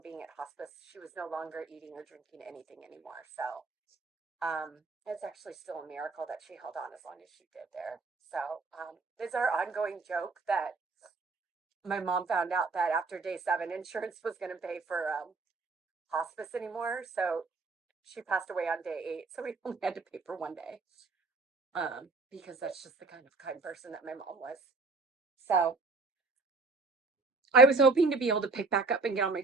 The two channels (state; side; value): quieter; left; 3.8 dB